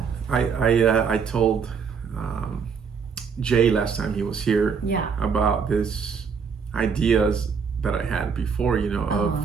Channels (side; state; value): left; quieter; 6.1 dB